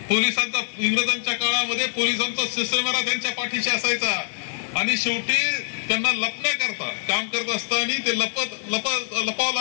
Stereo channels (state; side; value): silent; right; 62 dB below the other